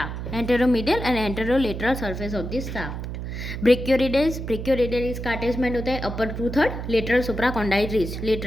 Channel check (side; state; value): right; noise; hum, 6 dB below the sound